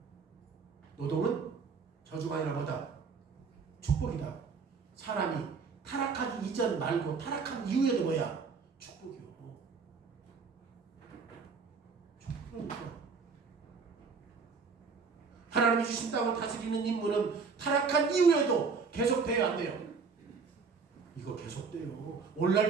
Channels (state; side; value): quieter; left; 5.1 dB